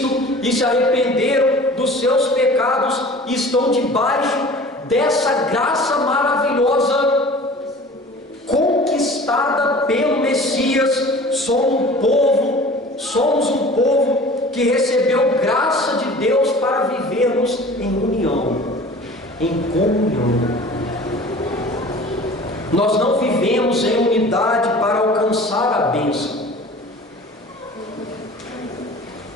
e se arrependeram dos seus pecados, estão debaixo dessa graça maravilhosa conquistada pelo Messias. Somos um povo que recebeu graça de Deus para vivermos em união, em comunhão. Nós não vivemos em unidade para alcançar a bênção.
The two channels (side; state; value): both; normal; correlation 0.43